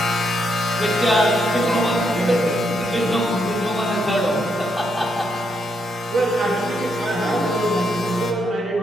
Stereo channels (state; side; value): normal; both; correlation 0.78